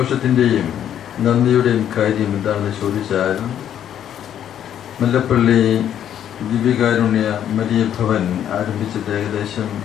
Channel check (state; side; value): quieter; right; 10.1 dB